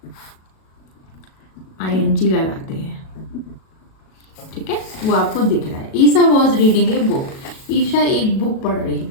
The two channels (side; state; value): right; late; 37 ms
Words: लगाते हैं, ठीक है। वो आपको दिख रहा है। Isha was reading a book, Isha एक बुक पढ़ रही